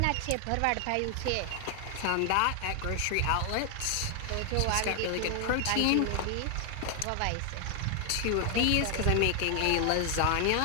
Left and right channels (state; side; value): different; both; correlation 0.00